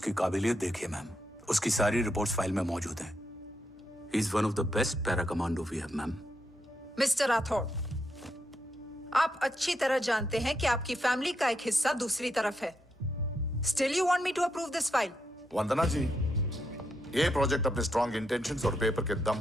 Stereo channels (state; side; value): normal; both; correlation 0.81